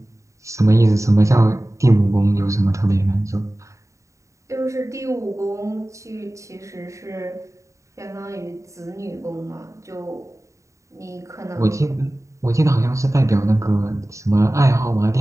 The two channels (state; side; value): late; left; 0.15 ms